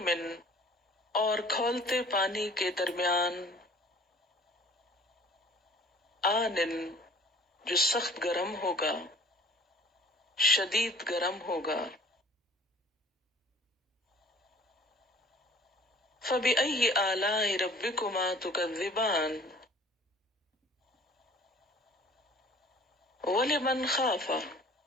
اور کھولتے پانی کے درمیان، آنن، جو سخت گرم ہوگا، شدید گرم ہوگا، فبأی آلاء ربکما تکذبان، ولمن خاف،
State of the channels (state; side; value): normal; both; correlation 0.50